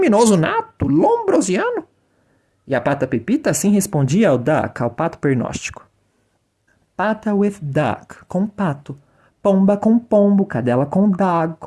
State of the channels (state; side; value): identical; both; correlation 1.00